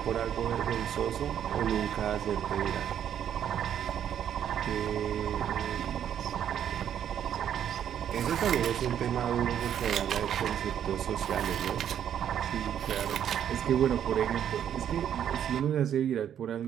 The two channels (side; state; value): left; quieter; 9.6 dB